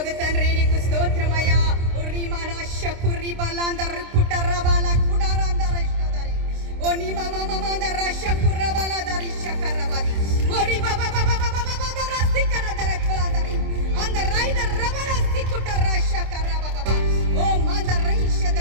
తండ్రి నీకు స్తోత్రమయ్యా.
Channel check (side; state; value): left; late; 26 ms